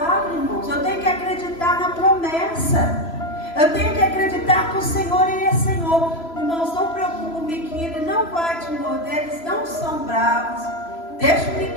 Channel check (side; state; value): right; late; 3.0 ms